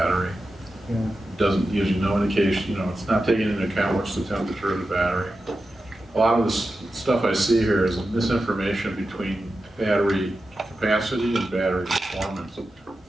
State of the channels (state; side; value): normal; both; correlation 0.91